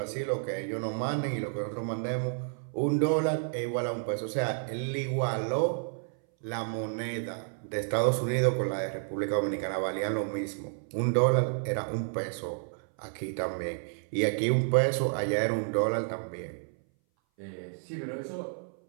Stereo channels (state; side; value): silent; left; 57 dB below the other